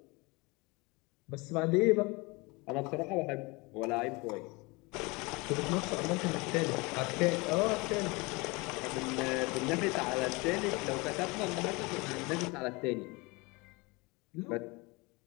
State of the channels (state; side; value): quieter; right; 26.0 dB